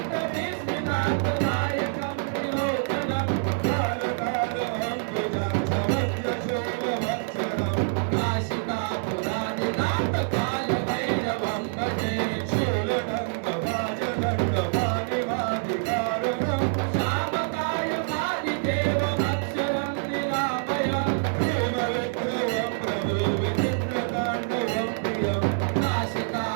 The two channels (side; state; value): left; silent; digital silence